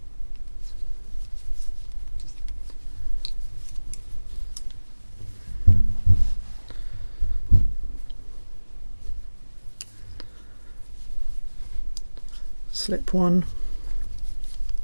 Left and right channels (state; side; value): inverted; both; correlation -1.00